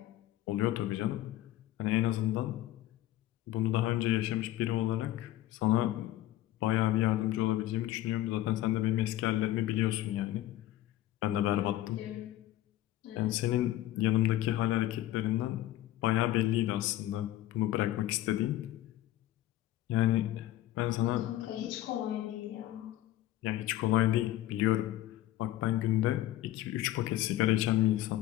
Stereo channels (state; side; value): quieter; right; 14.3 dB